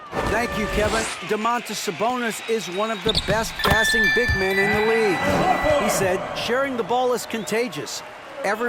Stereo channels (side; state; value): both; identical; correlation 1.00